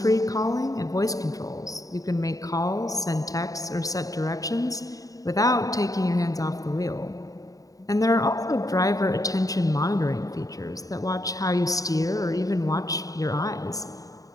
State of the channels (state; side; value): late; right; 0.17 ms